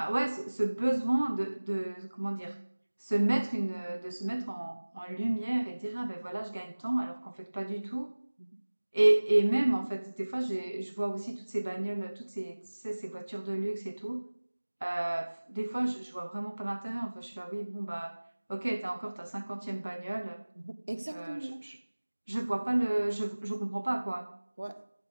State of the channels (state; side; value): inverted; both; correlation -1.00